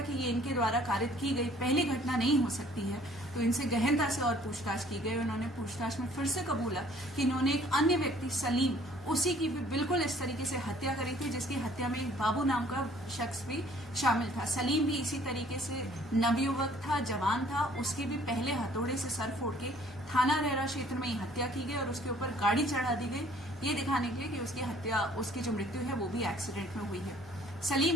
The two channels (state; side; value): normal; both; correlation 0.57